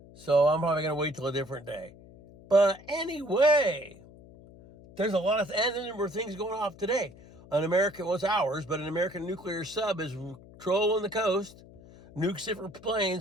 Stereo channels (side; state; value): left; noise; hum, 21 dB below the sound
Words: So I'm probably going to wait till a different day. But anyway, there's a lot of, and there were things going off today. An American, well, it's ours, but an American nuclear sub is trolling the coast. Nukes different